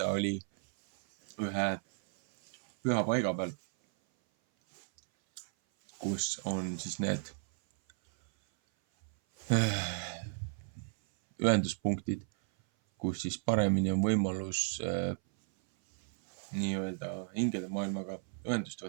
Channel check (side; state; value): left; silent; 55 dB below the other